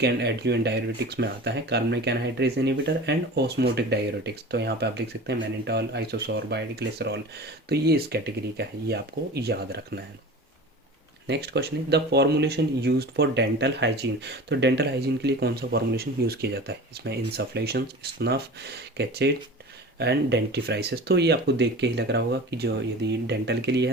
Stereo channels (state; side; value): normal; both; correlation 0.36